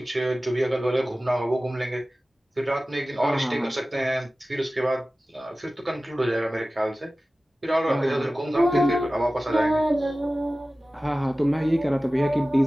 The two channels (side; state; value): both; normal; correlation 0.96